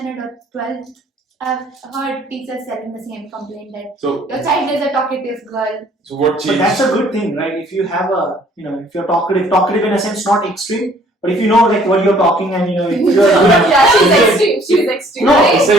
or 12th, I've heard teachers telling the same complaint that So your child is a talkative girl. what But changed? that's a good thing, right? If you have if you're talkative in a sense, not extreme, but if you know like what you're talking and you're Yeah, she's extreme. She's extreme. No, right? It's like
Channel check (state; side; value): normal; both; correlation 0.58